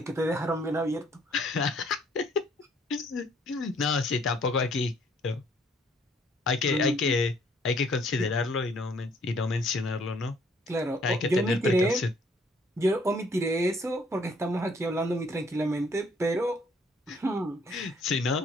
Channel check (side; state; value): both; normal; correlation 0.63